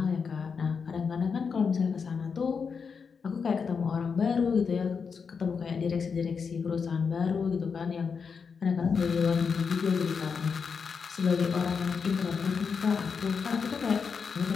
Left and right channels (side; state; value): right; quieter; 5.8 dB